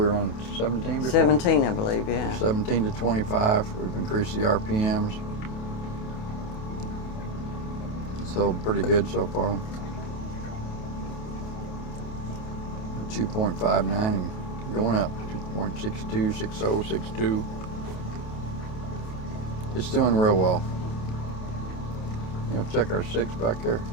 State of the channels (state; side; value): late; right; 28 ms